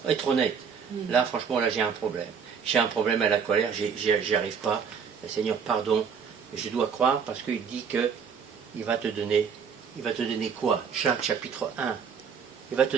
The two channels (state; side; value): quieter; left; 6.6 dB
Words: être honnête. Là, franchement, là, j'ai un problème. J'ai un problème à la colère, j'y arrive pas. Seigneur, pardon. Je dois croire parce qu'il dit que il va te donner quoi? Jacques chapitre 1. Il va te